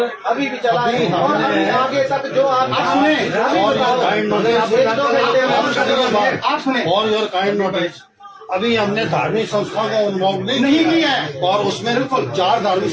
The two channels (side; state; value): both; identical; correlation 1.00